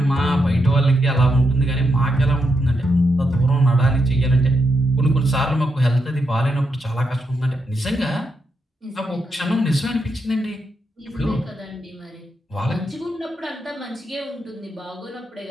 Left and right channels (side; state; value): both; normal; correlation 0.82